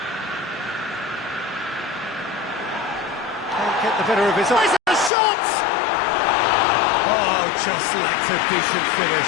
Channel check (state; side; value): drops out; right; at 5.1 s